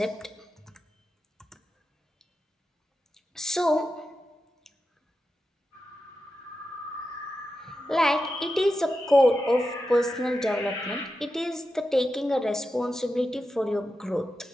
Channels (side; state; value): both; normal; correlation 0.90